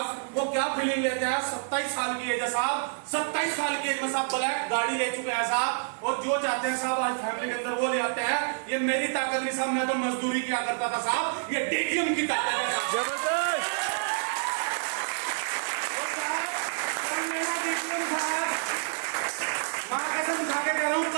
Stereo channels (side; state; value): left; silent; digital silence